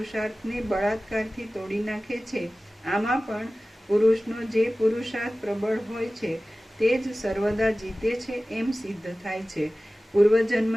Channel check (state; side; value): normal; both; correlation 0.97